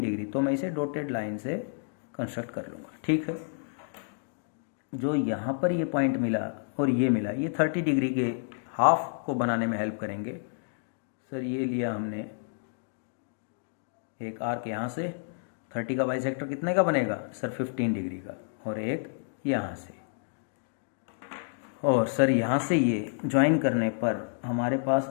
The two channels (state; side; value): silent; right; digital silence